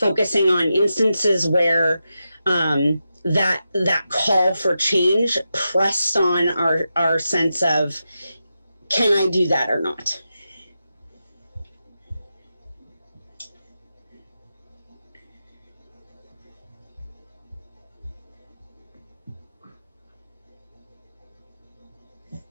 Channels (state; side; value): inverted; both; correlation -0.89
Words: on instances where that call for change pressed on our sense of, can I do that or not?